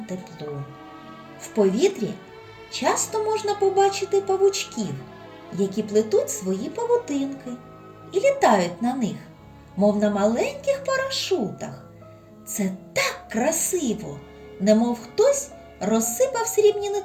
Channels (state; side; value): identical; both; correlation 1.00